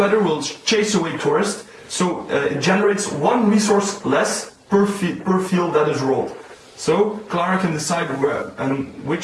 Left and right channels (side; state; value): both; identical; correlation 1.00